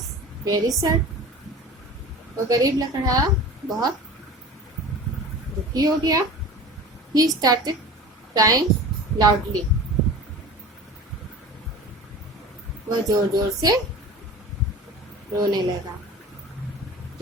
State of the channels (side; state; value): both; normal; correlation 0.38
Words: very sad. वो गरीब लकड़हारा बहुत दुखी हो गया। He started crying loudly. वह जोर जोर से रोने लगा।